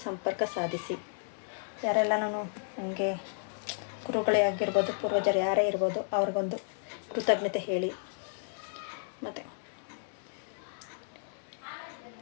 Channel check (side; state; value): right; silent; digital silence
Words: ಸಂಪರ್ಕ ಸಾಧಿಸಿ. ಯಾರೆಲ್ಲ ನನಗೆ ಗುರುಗಳೇ ಆಗಿರ್ಬೋದು, ಪೂರ್ವಜರು ಯಾರೇ ಇರ್ಬೋದು, ಅವ್ರಿಗೊಂದು ಕೃತಜ್ಞತೆ ಹೇಳಿ. ಮತ್ತು